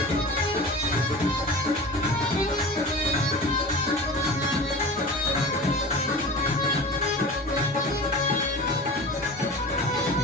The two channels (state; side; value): normal; both; correlation 0.34